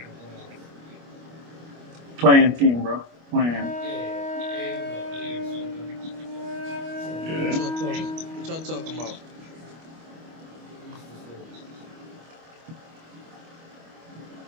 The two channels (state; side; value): late; left; 25 ms